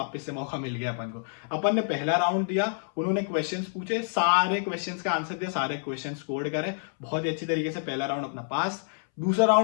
से मौका मिल गया अपन को। अपन ने पहला राउंड दिया, उन्होंने क्वेश्चंस पूछे, सारे क्वेश्चंस का आंसर दिया, सारे क्वेश्चंस स्कोर करे बहुत ही अच्छी तरीके से, पहला राउंड अपना पास। दूसरा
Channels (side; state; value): right; silent; 59 dB below the other